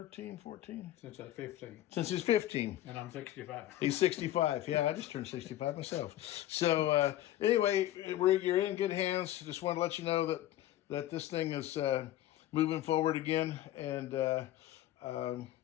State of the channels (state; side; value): quieter; right; 13.6 dB